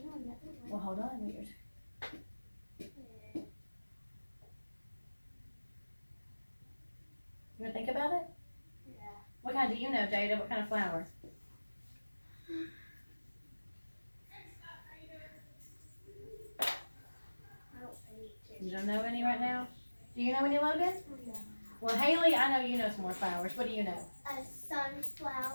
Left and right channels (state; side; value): inverted; both; correlation -1.00